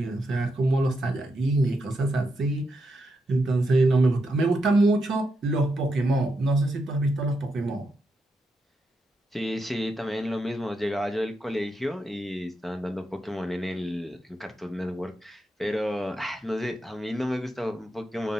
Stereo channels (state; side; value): normal; both; correlation 0.84